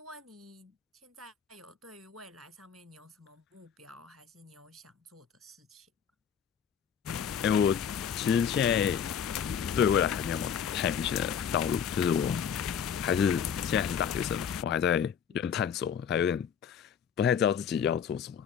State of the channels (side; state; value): right; quieter; 7.8 dB